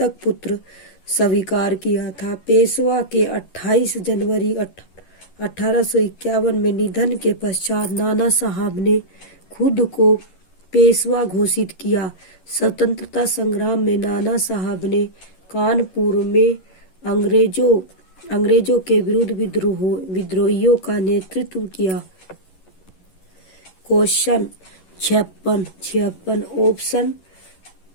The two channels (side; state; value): right; late; 11 ms